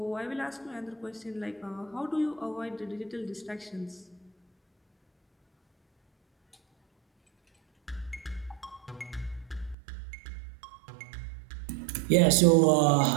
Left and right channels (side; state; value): left; drops out; at 9.8 s